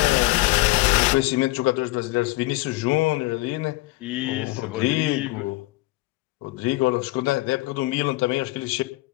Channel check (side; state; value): right; quieter; 20.2 dB